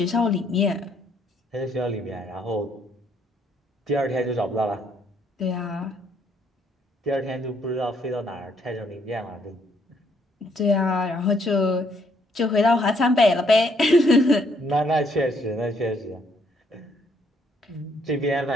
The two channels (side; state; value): both; normal; correlation 0.69